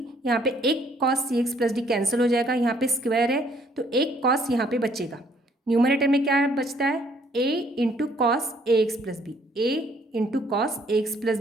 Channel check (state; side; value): normal; both; correlation 0.64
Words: यहाँ पे एक cos C x plus D cancel हो जाएगा, यहाँ पे स्क्वायर है तो एक कॉस यहाँ पे बचेगा। न्यूमरेटर में क्या बचता है a into cos A x plus B, a into cos A x plus